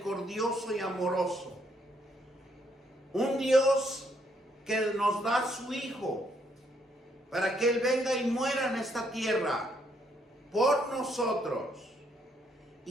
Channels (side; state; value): both; normal; correlation 0.72